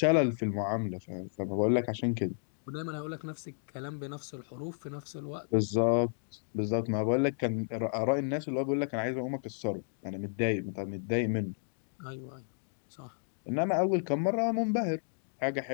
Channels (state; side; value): silent; right; digital silence